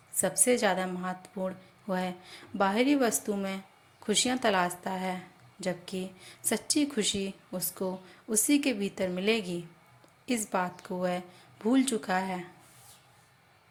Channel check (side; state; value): both; identical; correlation 1.00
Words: सबसे ज़्यादा महत्वपूर्ण वह बाहरी वस्तु में खुशियाँ तलाशता है, जबकि सच्ची खुशी उसको उसी के भीतर मिलेगी। इस बात को वह भूल चुका है।